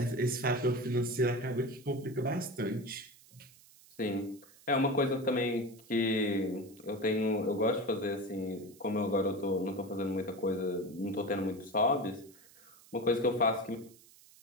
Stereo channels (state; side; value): noise; right; hiss, 24 dB below the sound